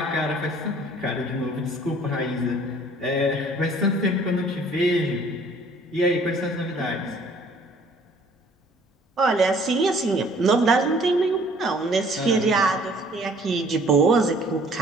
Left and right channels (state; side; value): normal; both; correlation 0.56